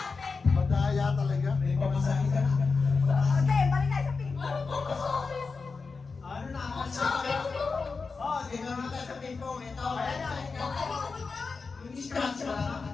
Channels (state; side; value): quieter; right; 4.5 dB